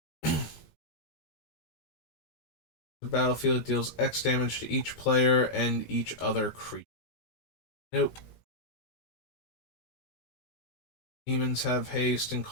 The battlefield deals X damage to each player and each other creature. Nope. Demons have haste and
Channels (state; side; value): late; right; 17 ms